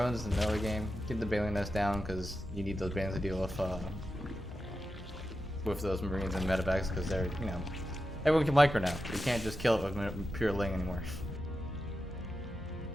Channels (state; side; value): normal; both; correlation 0.90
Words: in the middle of the game. Get the Baleen Nest down because you need those bands to deal with those Marines and medevacs because they're, you know, everyone can micro now. You can't just kill it with pure ling anymore.